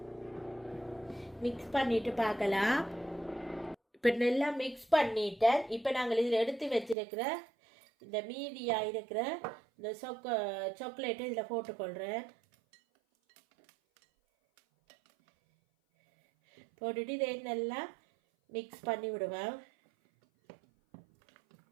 மிக்ஸ் பண்ணிட்டு பார்க்கலாம். இப்போ நல்லா மிக்ஸ் பண்ணிட்டேன். இப்போ நாங்கள் இதில் எடுத்து வச்சிருக்கிற இந்த மீதியாக இருக்கிற இந்த சாக்லேட்டை இதில் போட்டுக்கொள்கிறேன். போட்டுட்டு இதை நல்லா மிக்ஸ் பண்ணி விடுவேன்.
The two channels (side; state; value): left; drops out; at 7.0 s